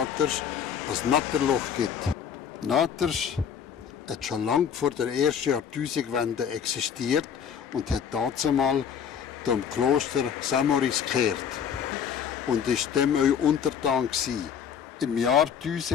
ein Natterloch gibt. Naters hat schon lange vor der ersten Jahrtausendwende existiert und hat dazumal dem Kloster Samoris gehört und ist dem auch untertan gewesen. Im Jahr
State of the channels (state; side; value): quieter; right; 7.7 dB